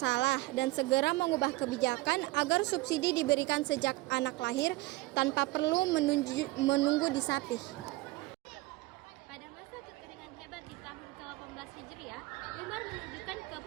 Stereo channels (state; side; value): quieter; left; 20.4 dB